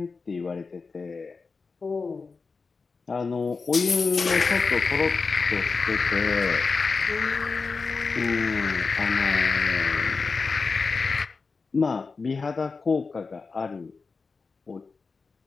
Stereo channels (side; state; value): right; quieter; 4.5 dB